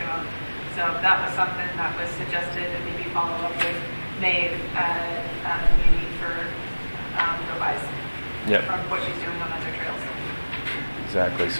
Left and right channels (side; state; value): both; inverted; correlation -1.00